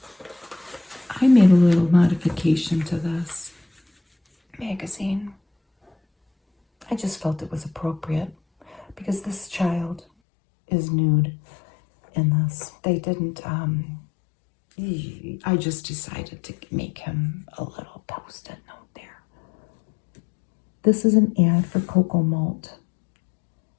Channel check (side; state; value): right; drops out; at 10.1 s